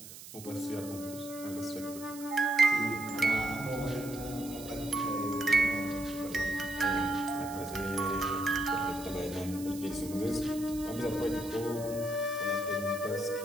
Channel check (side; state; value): right; noise; hiss, 14 dB below the sound